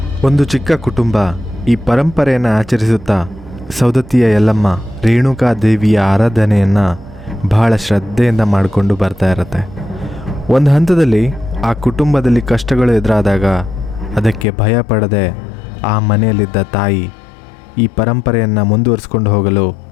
ಒಂದು ಚಿಕ್ಕ ಕುಟುಂಬ ಈ ಪರಂಪರೆಯನ್ನು ಆಚರಿಸುತ್ತಾ ಸೌದತ್ತಿಯ ಯಲ್ಲಮ್ಮ ರೇಣುಕಾದೇವಿಯ ಆರಾಧನೆಯನ್ನು ಬಹಳ ಶ್ರದ್ಧೆಯಿಂದ ಮಾಡಿಕೊಂಡು ಬರ್ತಾ ಇರುತ್ತೆ. ಒಂದು ಹಂತದಲ್ಲಿ ಆ ಕುಟುಂಬದಲ್ಲಿ ಕಷ್ಟಗಳು ಎದುರಾದಾಗ ಅದಕ್ಕೆ ಭಯ ಪಡದೆ ಆ ಮನೆಯಲ್ಲಿದ್ದ ತಾಯಿ ಈ ಪರಂಪರೆಯನ್ನು ಮುಂದುವರಿಸ್ಕೊಂಡು ಹೋಗಲು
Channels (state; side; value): drops out; right; at 14.5 s